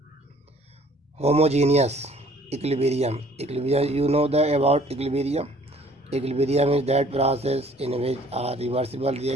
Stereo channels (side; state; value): both; normal; correlation 0.56